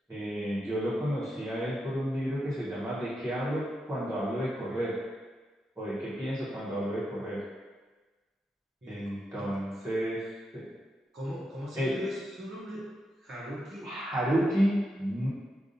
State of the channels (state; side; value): normal; both; correlation 0.85